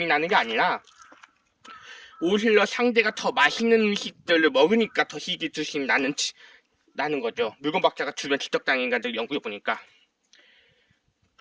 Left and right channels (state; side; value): identical; both; correlation 1.00